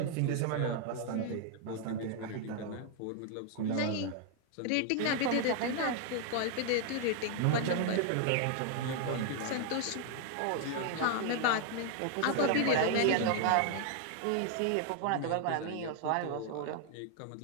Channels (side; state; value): both; different; correlation 0.00